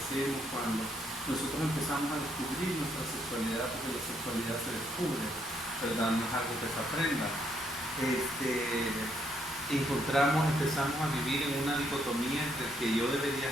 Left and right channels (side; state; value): both; normal; correlation 0.73